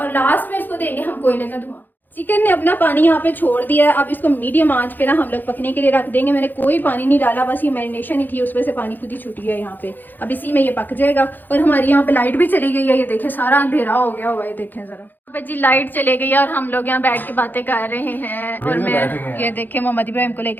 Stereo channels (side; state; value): right; late; 0.088 ms